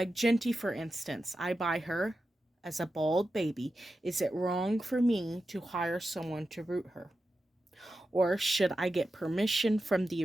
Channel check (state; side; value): normal; both; correlation 0.91